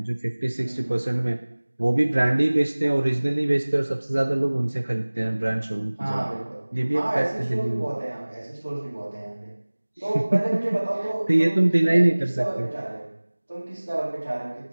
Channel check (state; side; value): inverted; both; correlation -1.00